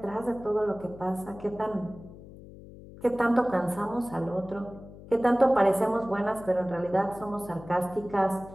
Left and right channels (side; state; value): left; noise; hum, 17 dB below the sound